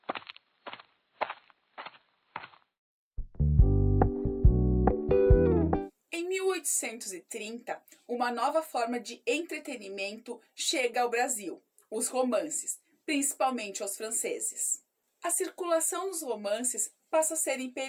Em 1830, uma nova forma de entretenimento chega ao Brasil, os romances, principalmente aos franceses. A circulação dos romances passa a ser em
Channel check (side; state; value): both; identical; correlation 1.00